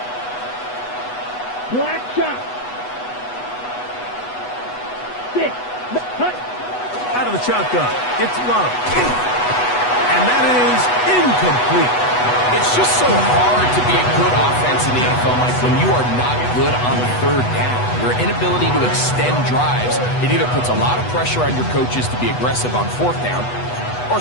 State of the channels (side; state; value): right; late; 8.1 ms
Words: Black shot. 6. Cut. Out of the shotgun, it's Love. And that is incomplete. It's just so hard to be a good offense in the NFL, Mike, when you are not good on 3rd down. Your inability to extend drives, it either puts a lot of pressure on your coaches to be aggressive on 4th down or